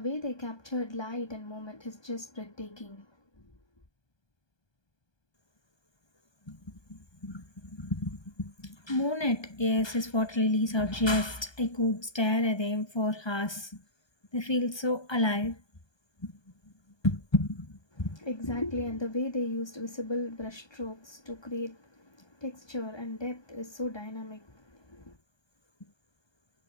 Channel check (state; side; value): late; right; 1.2 ms